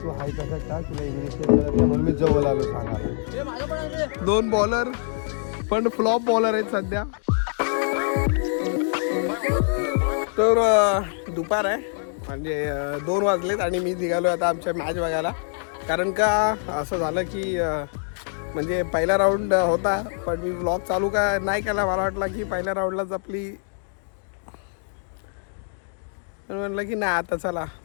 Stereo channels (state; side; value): silent; right; 62 dB below the other